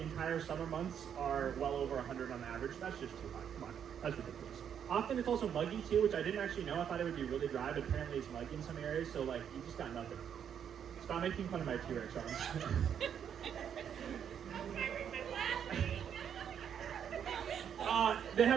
entire summer months are well over 100 on average. That's just too high. Come on, that's ridiculous. Often it's also muggy too, which I didn't actually know. I thought it would be really dry, but apparently it's muggy in some areas. So like, you just got nothing. Stop making fun of my T-Rex arms. They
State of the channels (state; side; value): quieter; left; 8.5 dB